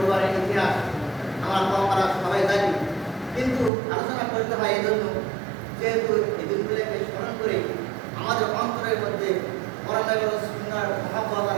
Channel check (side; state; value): left; drops out; at 3.7 s